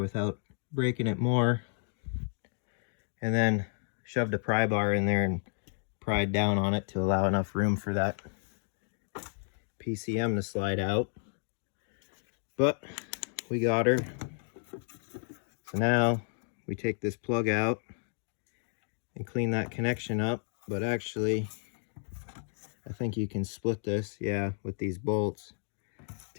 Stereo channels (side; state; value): right; silent; digital silence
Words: breaking it more. And then shoved a pry bar in there and pried down on it to allow enough room for that PCM to slide out. But we got her. So now we take this plug out and clean that connection up. But actually, I think you can split this, yeah, with these bolts.